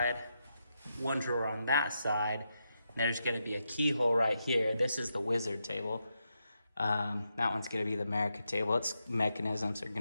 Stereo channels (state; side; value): inverted; both; correlation -0.84